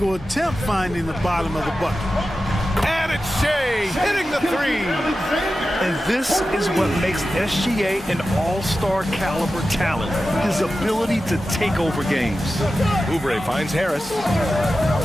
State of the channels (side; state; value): both; normal; correlation 0.93